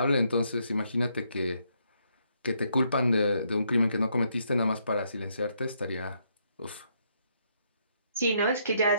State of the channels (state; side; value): inverted; both; correlation -0.75